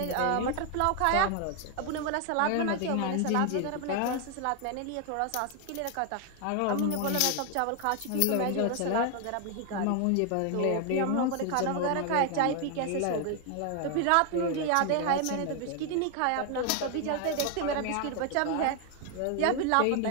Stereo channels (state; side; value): different; both; correlation 0.01